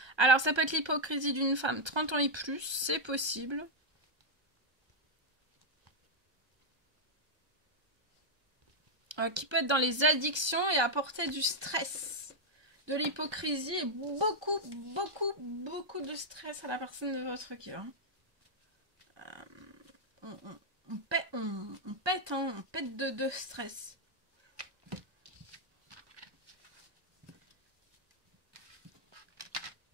Alors ça peut être l'hypocrisie d'une femme 30 ans et plus, c'est possible. Qui peut être dans les addictions et apporter du stress. De l'hypocrisie et beaucoup, beaucoup, beaucoup de stress à la personne de votre cœur. On pète, hein, on pète de stress.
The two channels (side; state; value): left; late; 1.3 ms